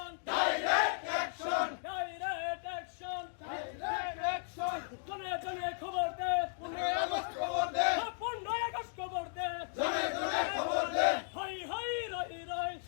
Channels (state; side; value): silent; right; digital silence